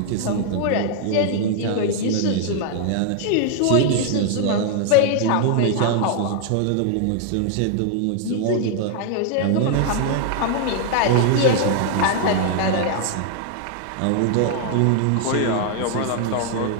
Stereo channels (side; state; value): both; different; correlation 0.00